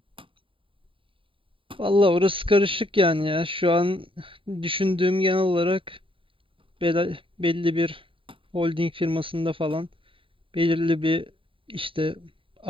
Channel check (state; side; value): late; left; 0.25 ms